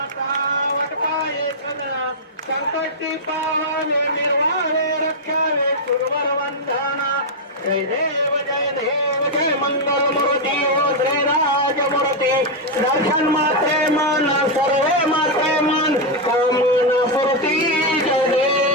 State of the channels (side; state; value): both; normal; correlation -0.01